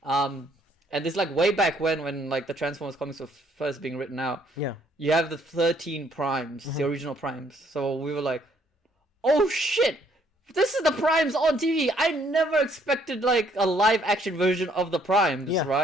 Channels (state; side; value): normal; both; correlation 0.66